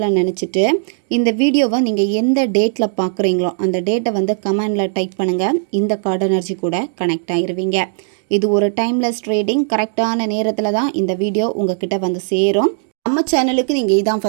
நினச்சிட்டு இந்த வீடியோவை நீங்கள் எந்த டேட்டில் பார்க்குறீங்களோ அந்த டேட்டை வந்து கமெண்டில் டைப் பண்ணுங்கள். இந்த கார்டு எனர்ஜி கூட கனெக்ட் ஆகிருவீங்க. இது ஒரு டைம்லெஸ் ட்ரேடிங். கரெக்டான நேரத்தில் தான் இந்த வீடியோ உங்ககிட்ட வந்து சேரும். நம்ம சேனலுக்கு நீங்கள் இதான்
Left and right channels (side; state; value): left; silent; digital silence